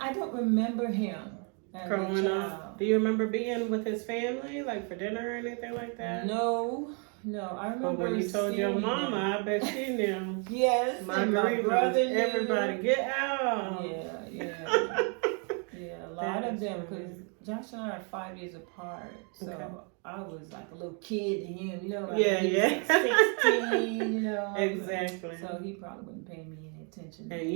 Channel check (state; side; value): quieter; left; 37.9 dB